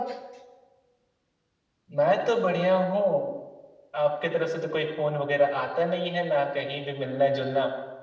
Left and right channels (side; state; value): both; identical; correlation 1.00